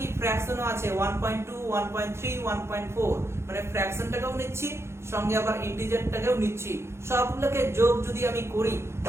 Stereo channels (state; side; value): late; left; 0.13 ms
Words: ফ্র্যাকশনও আছে 1.2 1.3 1.4, মানে ফ্র্যাকশনটাকেও নিচ্ছি সঙ্গে আবার ইন্টিজারটাকেও নিচ্ছি। সবগুলোকে যোগ যদি আমি করি